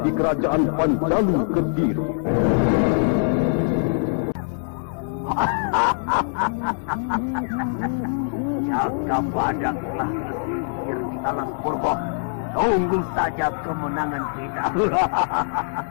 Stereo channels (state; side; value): silent; right; 63 dB below the other